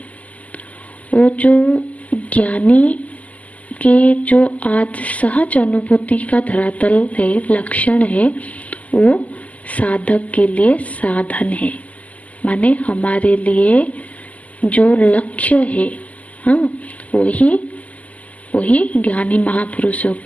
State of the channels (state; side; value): late; right; 0.073 ms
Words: वो जो ज्ञानी के जो आज सहज अनुभूति का धरातल है, लक्षण है, वो साधक के लिए साधन है। माने हमारे लिए जो लक्ष्य है, हाँ, वही ज्ञानी महापुरुषों